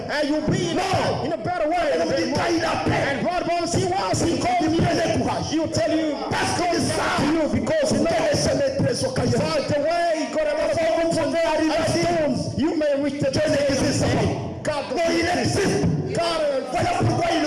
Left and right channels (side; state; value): both; identical; correlation 1.00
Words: and you'll be in a better way. Il nous dit quand il appelle, And God wants, he wants, he called you, prenez courage. he'll tell you, Parce que to ça, you, because you know, que les chemins très occasionels. by the way, he got a lot of problems and stones. You may reach the destination. God, Non, il existe. God, Voilà pourquoi